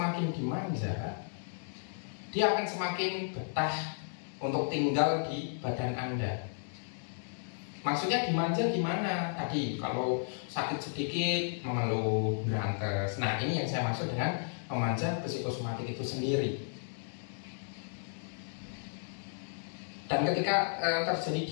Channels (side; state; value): right; silent; digital silence